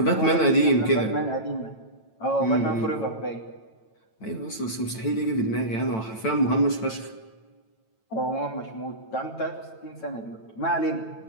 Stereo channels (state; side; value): late; right; 9.0 ms